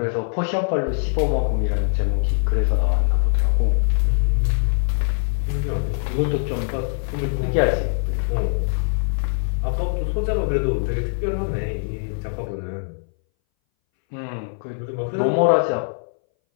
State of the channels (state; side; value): silent; right; 62 dB below the other